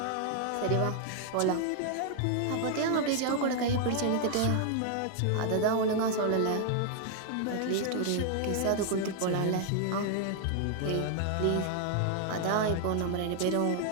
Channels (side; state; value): both; different; correlation 0.00